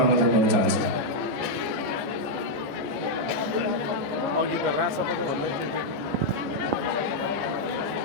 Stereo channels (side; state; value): left; late; 15 ms